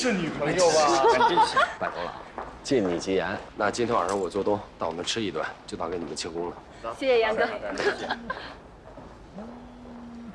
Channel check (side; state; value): both; identical; correlation 1.00